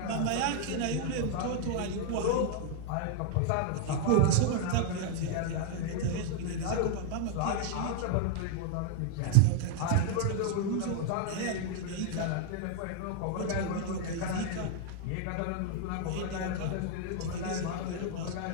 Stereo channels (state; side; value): different; both; correlation 0.00